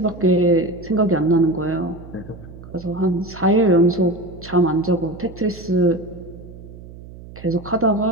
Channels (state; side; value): noise; right; hum, 17 dB below the sound